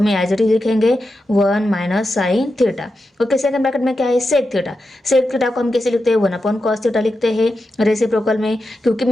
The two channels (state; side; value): normal; both; correlation 0.89